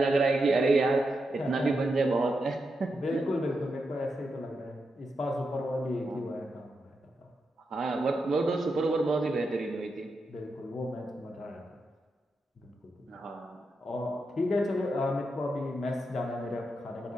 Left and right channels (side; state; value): both; normal; correlation 0.86